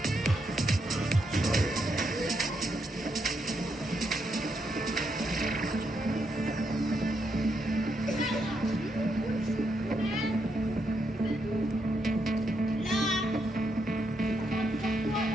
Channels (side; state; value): both; normal; correlation 0.79